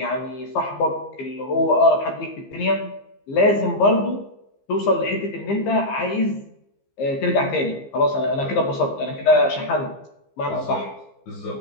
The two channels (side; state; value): right; late; 15 ms